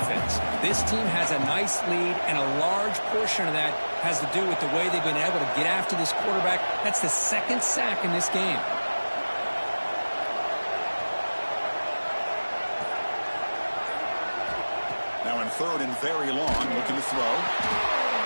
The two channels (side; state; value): both; inverted; correlation -1.00